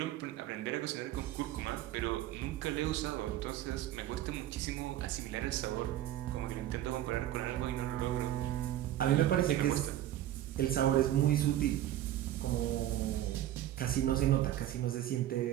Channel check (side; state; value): left; quieter; 13.0 dB